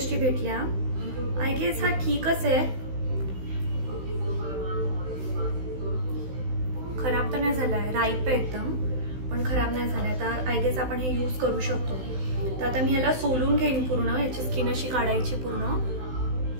भेटल्या. आय गेस हा ठीकच आहे, खराब तर नाही झालाय. राईप आहे एकदम, पण खराब नाही झालाय. तर आय गेस आपण हे यूज करू शकतो. तर आता मी ह्याला सोलून घेईन पूर्ण, याची स्किन अशी काढायची पूर्ण.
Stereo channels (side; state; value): left; late; 16 ms